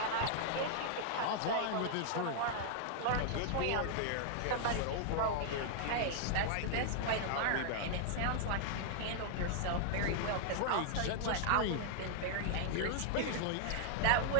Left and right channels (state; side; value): different; both; correlation -0.01